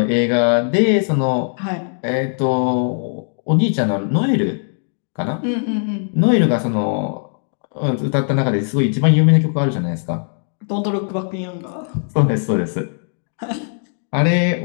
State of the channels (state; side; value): silent; right; digital silence